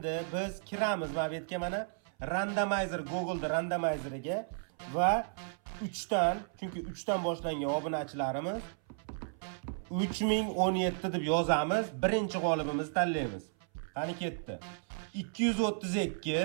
biz kiramiz mana bu yerga, mana randomizer, Google'da randomizeriga va 3 dan, chunki 3 dan boshlangan obunachilarimiz 3017 deb yozamiz. Birinchi g'olibimizni tanlaymiz. Qani ketdi.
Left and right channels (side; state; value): left; silent; 55 dB below the other